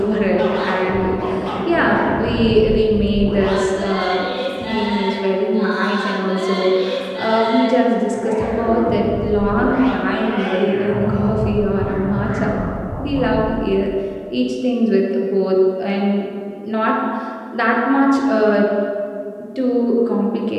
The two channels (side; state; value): both; identical; correlation 1.00